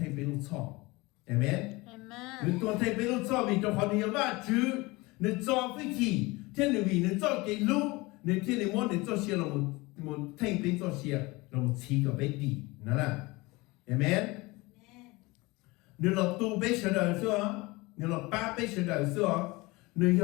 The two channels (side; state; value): right; quieter; 23.0 dB